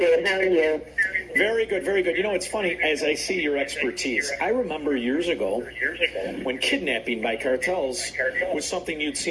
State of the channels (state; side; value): identical; both; correlation 1.00